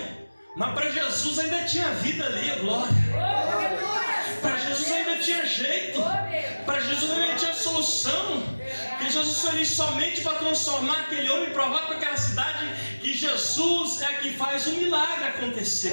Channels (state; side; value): inverted; both; correlation -1.00